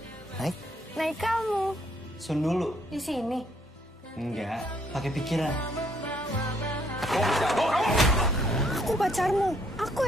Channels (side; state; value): both; normal; correlation 0.68